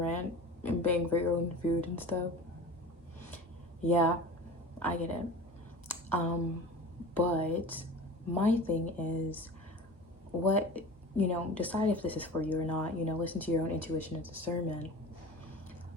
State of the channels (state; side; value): normal; both; correlation 0.36